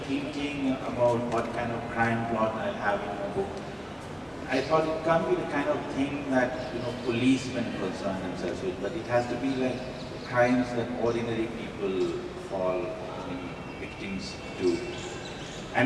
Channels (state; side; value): identical; both; correlation 1.00